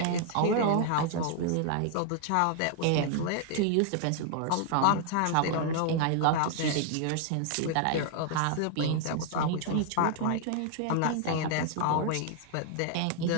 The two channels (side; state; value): both; different; correlation 0.00